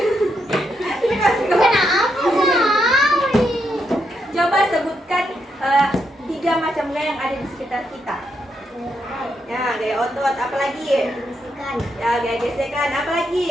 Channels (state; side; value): normal; both; correlation 0.80